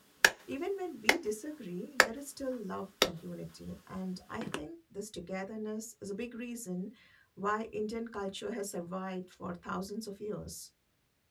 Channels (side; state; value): both; identical; correlation 1.00